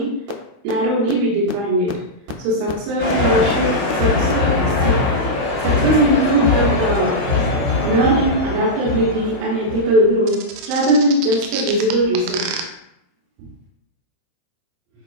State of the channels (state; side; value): late; left; 23 ms